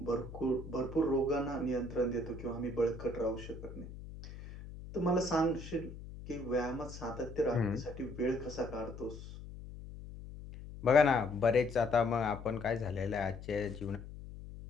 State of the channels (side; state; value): left; noise; hum, 13 dB below the sound